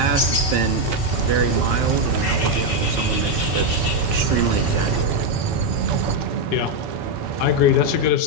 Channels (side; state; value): right; late; 5.3 ms